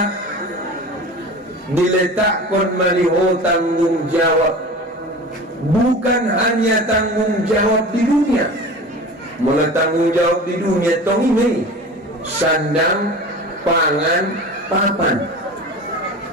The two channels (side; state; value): both; normal; correlation 0.35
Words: diletakkan maliho tanggung jawab, bukan hanya tanggung jawab di dunia. Mula tanggung jawab di dunia tong ini sandang, pangan, papan.